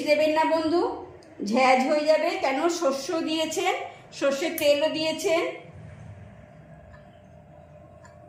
দেবেন না বন্ধু, ঝ্যাঁঝ হয়ে যাবে, কেন শস্য দিয়েছেন, সর্ষের তেলও দিয়েছেন।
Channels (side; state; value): both; identical; correlation 1.00